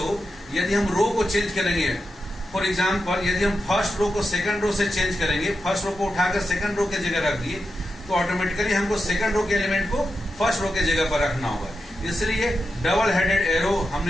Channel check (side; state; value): both; normal; correlation 0.88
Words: यदि हम रो को चेंज करेंगे, फॉर एग्जाम्पल यदि हम फर्स्ट रो को सेकंड रो से चेंज करेंगे, फर्स्ट रो को उठाकर सेकंड रो के जगह रख दिए तो ऑटोमेटिकली हमको सेकंड रो के एलिमेंट को फर्स्ट रो के जगह पर रखना होगा। इसलिए डबल हेडेड एरो